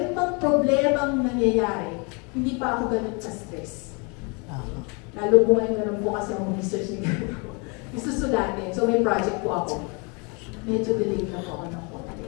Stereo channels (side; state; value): right; quieter; 32.0 dB